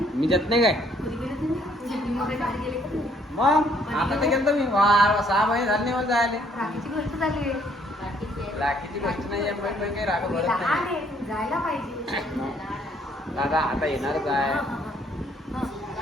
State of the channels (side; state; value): both; normal; correlation 0.65